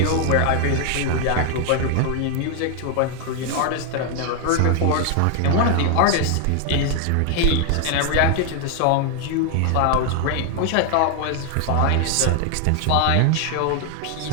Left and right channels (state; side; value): different; both; correlation 0.00